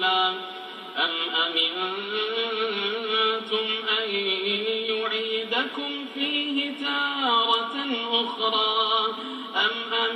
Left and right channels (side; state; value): both; identical; correlation 1.00